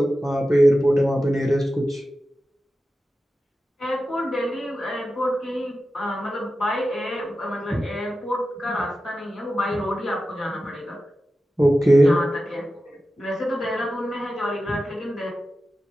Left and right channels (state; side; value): normal; both; correlation 0.93